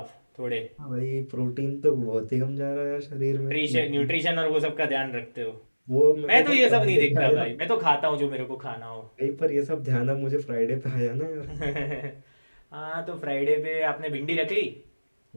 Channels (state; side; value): inverted; both; correlation -1.00